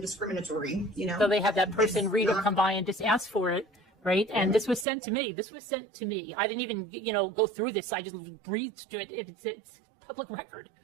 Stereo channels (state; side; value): drops out; left; at 4.9 s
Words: discriminatory, So they have that person, Rita, come by and just ask for it, right? And this was sent to me. I didn't even, go through this. I just breathed to it. It's public record.